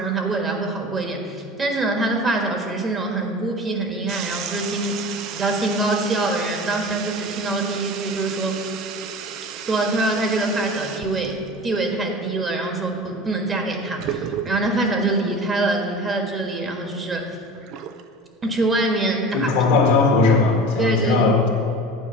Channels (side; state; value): both; normal; correlation 0.36